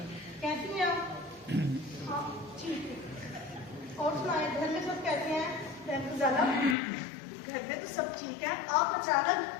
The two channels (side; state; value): right; drops out; at 6.8 s